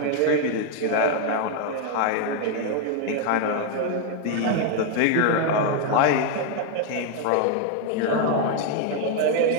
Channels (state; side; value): different; both; correlation 0.00